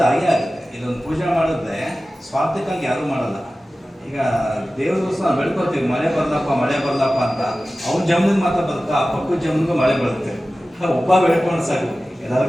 ಆಗುತ್ತೆ. ಇದೊಂದು ಪೂಜೆ ಮಾಡಿದ್ರೆ ಸ್ವಾರ್ಥಕ್ಕಾಗಿ ಯಾರೂ ಮಾಡಲ್ಲ. ಈಗ ದೇವ್ರ ದಿವಸ ಬೆಳ್ಕೊತೀವಿ, ಮಳೆ ಬರಲಪ್ಪ ಅಂತ. ಅವ್ನ ಜಮೀನಿಗೆ ಮಾತ್ರ ಬರುತ್ತಾ, ಪಕ್ಕದ ಜಮೀನಿಗೂ ಮಳೆ ಬರುತ್ತೆ. ಒಬ್ಬ ಬೆಳ್ಕೊಂಡು ಸಾಕು,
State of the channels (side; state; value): both; normal; correlation 0.96